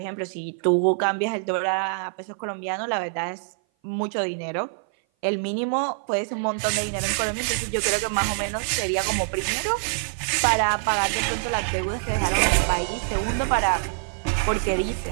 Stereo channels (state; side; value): silent; left; 57 dB below the other